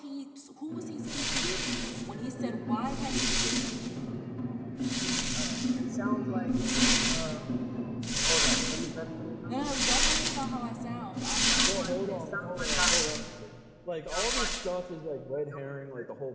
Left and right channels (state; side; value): identical; both; correlation 1.00